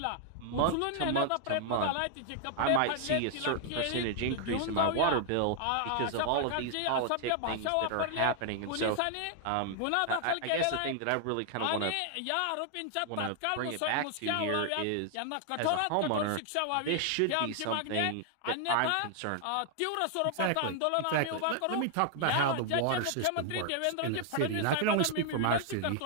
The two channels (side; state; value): both; different; correlation 0.00